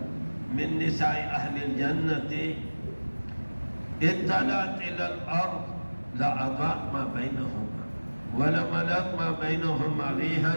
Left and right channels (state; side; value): inverted; both; correlation -1.00